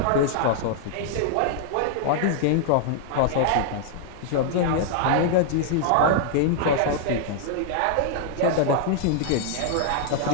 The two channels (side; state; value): both; different; correlation -0.01